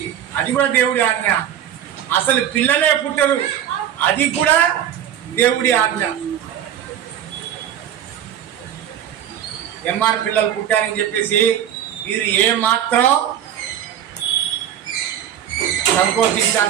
అది కూడా దేవుడి ఆజ్ఞ. అసలు పిల్లలే పుట్టరు, అది కూడా దేవుడి ఆజ్ఞ. ఎంఆర్ పిల్లలు పుట్టారని చెప్పేసి మీరు ఏమాత్రం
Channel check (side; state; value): left; quieter; 10.2 dB